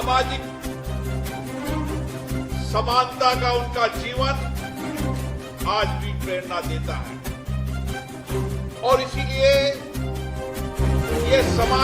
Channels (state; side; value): identical; both; correlation 1.00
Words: समानता का उनका जीवन आज भी प्रेरणा देता है। और इसीलिए ये